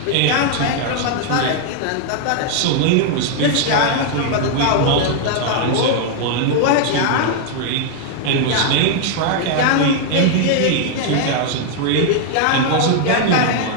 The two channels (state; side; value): different; both; correlation 0.00